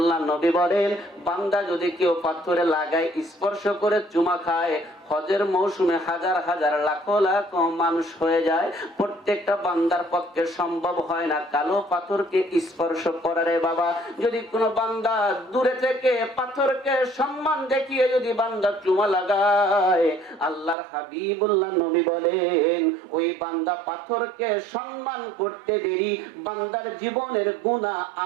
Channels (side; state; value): left; drops out; at 20.8 s